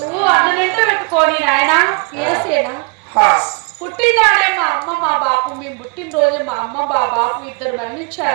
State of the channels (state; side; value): quieter; left; 31.8 dB